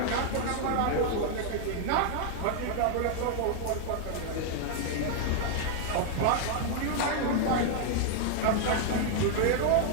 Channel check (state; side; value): different; both; correlation 0.00